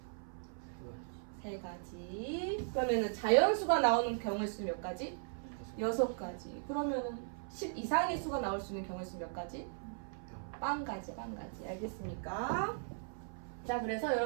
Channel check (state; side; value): silent; left; 53 dB below the other